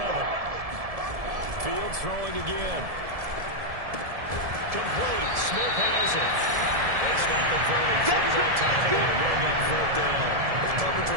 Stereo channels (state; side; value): late; left; 1.7 ms